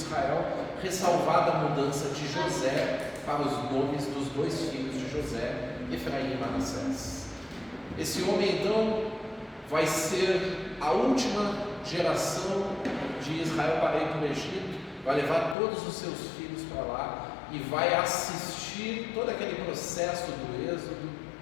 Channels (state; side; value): drops out; right; at 15.6 s